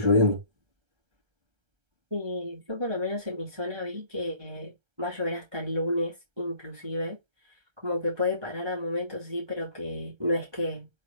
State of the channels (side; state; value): left; late; 1.3 ms